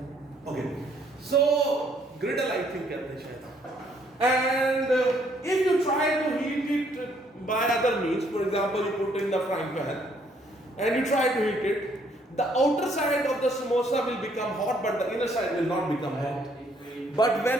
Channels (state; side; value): normal; both; correlation 0.67